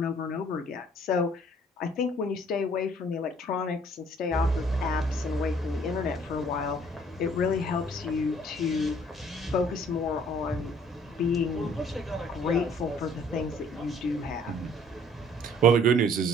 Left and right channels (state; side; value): normal; both; correlation 0.58